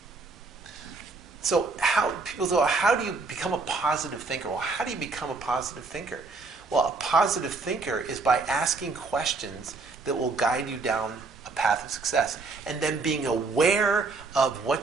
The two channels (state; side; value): quieter; left; 3.9 dB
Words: So people say, how do you become a positive thinker? Well, how do you become a positive thinker? Well, a positive thinker is by asking questions that will guide you down a path of success. And then being aware of